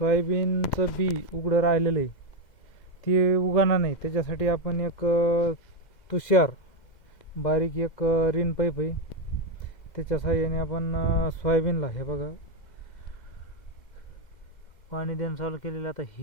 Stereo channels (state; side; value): late; right; 2.1 ms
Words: बी उघडं राहिलेलं आहे ते उगवणार नाही. त्याच्यासाठी आपण एक तुषार बारीक एक रिन पाईप आहे, त्याच्या साहाय्याने आपण सोयाबीनला हे बघा पाणी देणं चालू केलेलं. आता